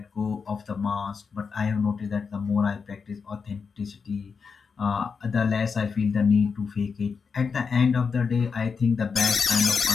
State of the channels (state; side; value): quieter; right; 5.5 dB